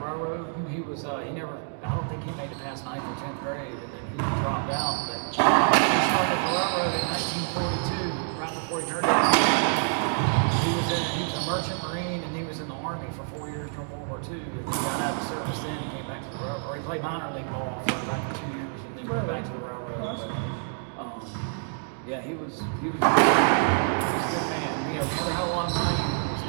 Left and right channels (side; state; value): left; silent; 60 dB below the other